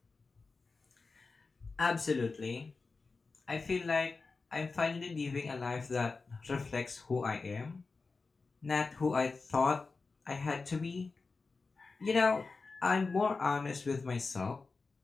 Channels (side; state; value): right; quieter; 4.1 dB